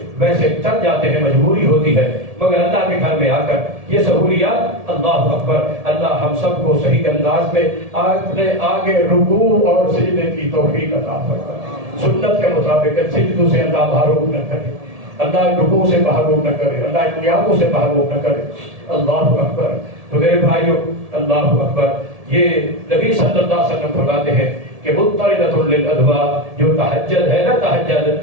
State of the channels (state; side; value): late; left; 1.7 ms